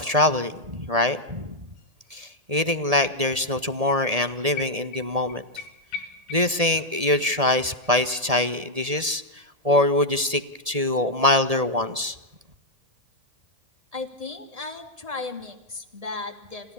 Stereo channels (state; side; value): late; left; 1.7 ms